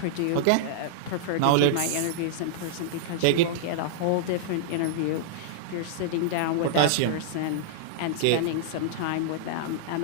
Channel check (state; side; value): different; both; correlation -0.02